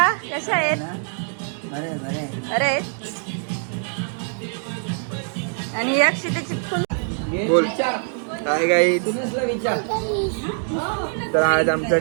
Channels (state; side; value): silent; left; 63 dB below the other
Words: कसे आहेत? अरे आणि एक शीटेची फुल बोल काय गाई. तर आज